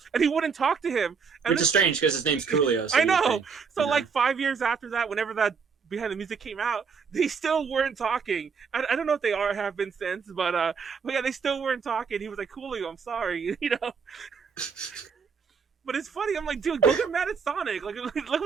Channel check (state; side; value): quieter; left; 5.8 dB